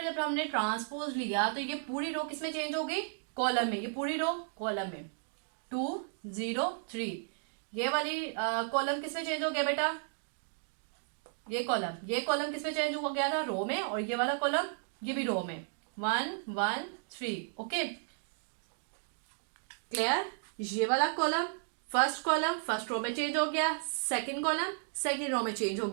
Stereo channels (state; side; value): silent; left; digital silence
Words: जब हमने ट्रांसपोज लिया तो ये पूरी रो किसमें चेंज हो गई, कॉलम में, ये पूरी रो कॉलम में 2 0 3। ये वाली कॉलम किसमें चेंज हो गया बेटा, ये कॉलम किसमें चेंज हो गया था, रो में, और ये वाला कॉलम ये भी रो में, 1 1 3। Okay, clear. ये वाला कॉलम फर्स्ट रो में चेंज हो गया, सेकंड कॉलम सेकंड रो में चेंज हो